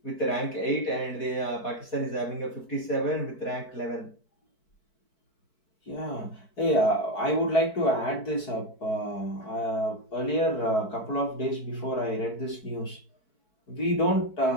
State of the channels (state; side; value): late; right; 4.6 ms